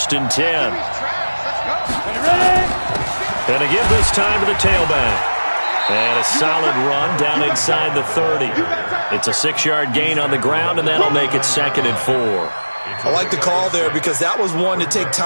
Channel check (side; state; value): both; inverted; correlation -1.00